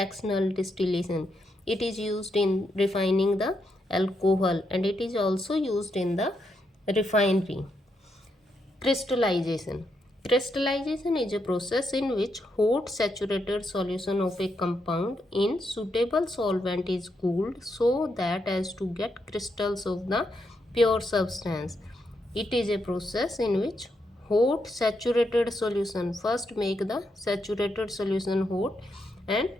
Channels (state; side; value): normal; both; correlation 0.81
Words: distillation. It is used in refining the alcohol and it is also used in the refinery. Crystallization. Crystallization is a process in which hot saturated solution of a compound in suitable solvent is cooled so that as to get crystals of the pure substance. It is a process in which hot saturated solution, first make the saturated solution hot, and